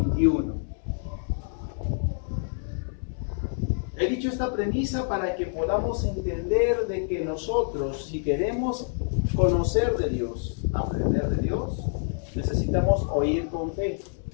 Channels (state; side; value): silent; right; 60 dB below the other